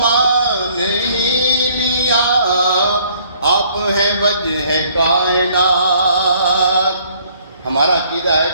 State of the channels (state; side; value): inverted; both; correlation -0.61